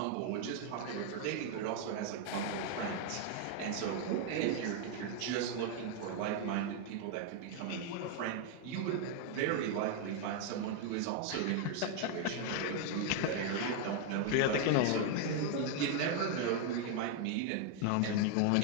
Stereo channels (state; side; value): different; both; correlation 0.00